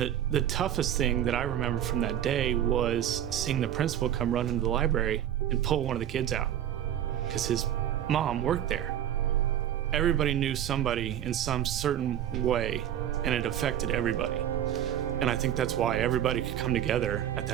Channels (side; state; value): left; quieter; 10.8 dB